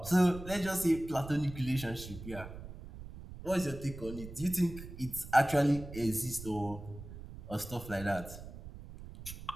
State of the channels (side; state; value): right; noise; rumble, 13 dB below the sound